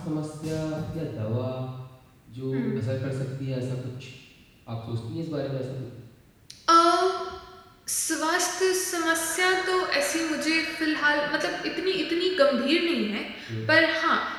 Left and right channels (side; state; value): both; identical; correlation 1.00